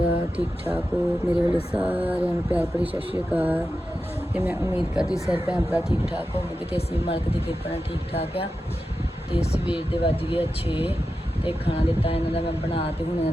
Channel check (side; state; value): both; normal; correlation 0.91